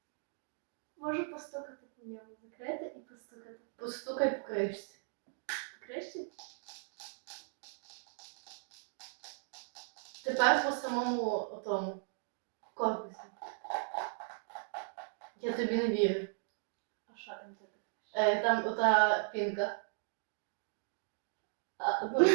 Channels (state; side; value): silent; left; digital silence